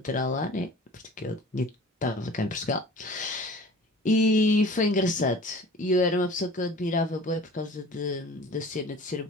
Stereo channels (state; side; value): normal; both; correlation 0.43